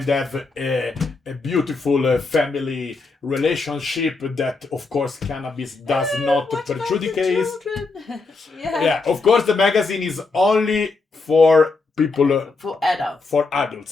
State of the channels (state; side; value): quieter; right; 3.9 dB